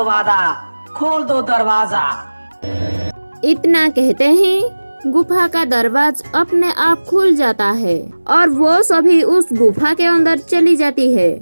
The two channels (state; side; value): inverted; both; correlation -1.00